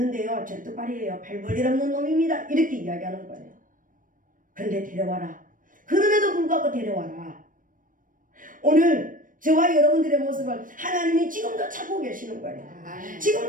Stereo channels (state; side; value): late; left; 0.39 ms